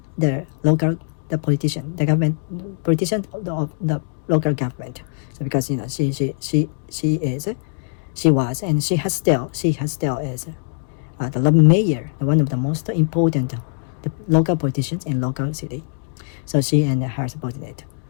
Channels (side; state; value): right; silent; 65 dB below the other